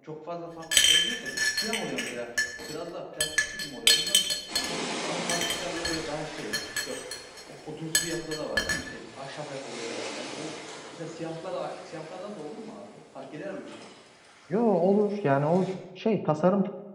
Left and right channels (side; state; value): both; identical; correlation 1.00